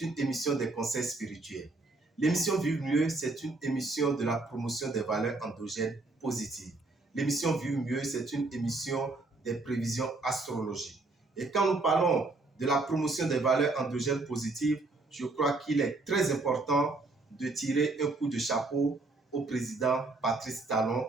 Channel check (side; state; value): left; quieter; 3.3 dB